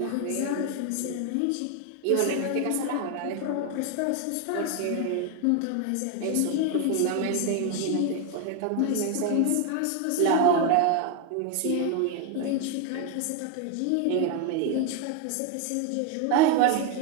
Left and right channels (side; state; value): both; different; correlation 0.01